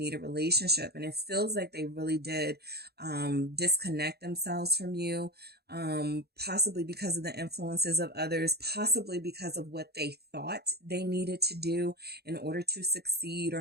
a relationship. And it feels like they really did, disconnect themselves from you. Possibly because of the influences of others, possibly because of what they thought they needed to do in order to succeed or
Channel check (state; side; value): late; left; 0.47 ms